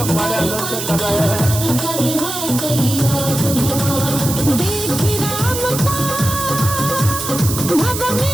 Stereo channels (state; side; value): noise; right; hiss, 5 dB below the sound